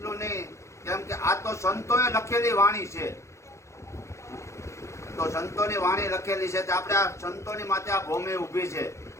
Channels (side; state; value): right; late; 0.14 ms